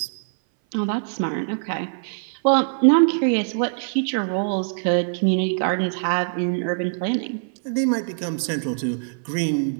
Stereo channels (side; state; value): left; silent; 59 dB below the other